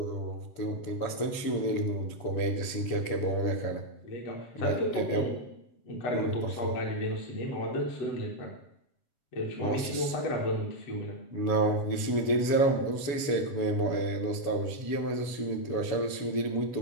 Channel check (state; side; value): late; right; 7.1 ms